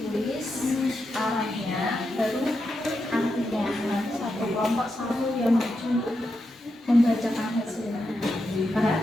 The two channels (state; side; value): normal; both; correlation 0.86